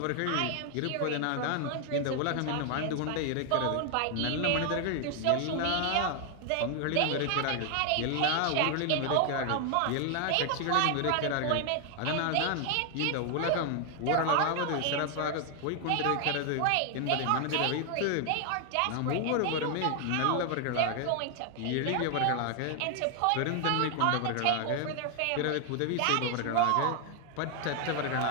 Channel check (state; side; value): different; both; correlation 0.00